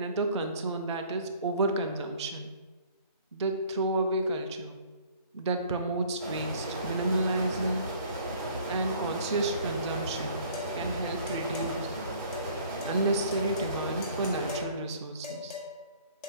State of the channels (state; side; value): inverted; both; correlation -0.53